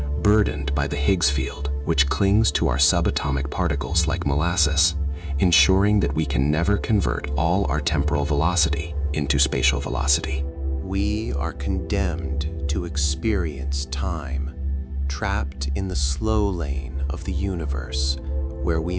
burdened by the Higgs field, which clings to our subatomic particles like molasses, ensuring that we can never convert all our temporal velocity into spatial velocity. We are condemned to experience time, trapped in the slow lane of the universe, where we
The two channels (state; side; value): identical; both; correlation 1.00